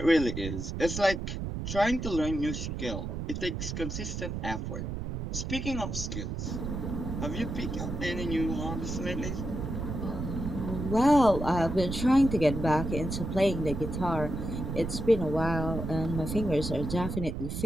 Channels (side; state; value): right; noise; rumble, 4 dB below the sound